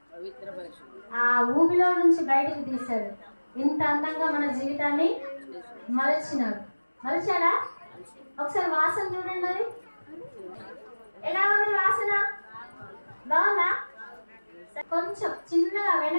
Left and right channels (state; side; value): inverted; both; correlation -1.00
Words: ఆ ఊబిలో నుంచి బయటకు తీశాడు. ఇంత అందంగా మన జీవితాన్ని మలచినాడు. మలిచాడా? ఒకసారి వాసన చూడండి. అది ఎలా ఉంది వాసన? బాగుందా? కొంచెం చిన్నగా